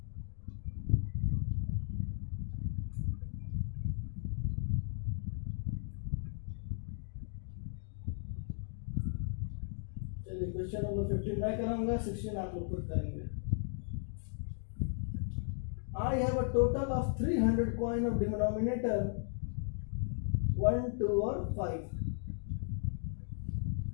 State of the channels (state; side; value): silent; right; digital silence